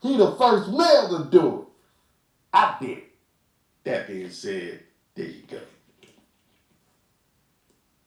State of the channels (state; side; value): identical; both; correlation 1.00